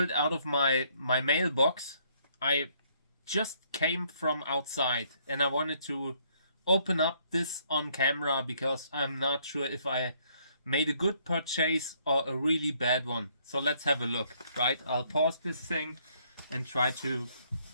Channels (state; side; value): inverted; both; correlation -0.68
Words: out of my mailbox. I just came from outside and I wanted to open up this on camera because I'm not sure if I made a good purchase or a really bad one. So let's have a look, right? I'll pause this thing and try to